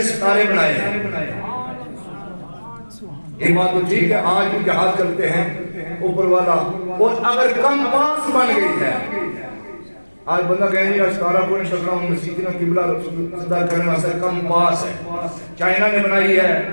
ستارے بنائے ہیں۔ یہ بات تو ٹھیک ہے، آج بھی جہاز چلتے ہیں اوپر والا، اور اگر کم پاس بن گئی ہے، آج بندہ کہیں نہیں ستارہ کو نہیں ٹکرا ہوں مسیحنا قبلہ صدا کرنے واسطے کم پاس ہے۔ چائنا نے بنائی ہے،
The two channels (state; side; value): inverted; both; correlation -1.00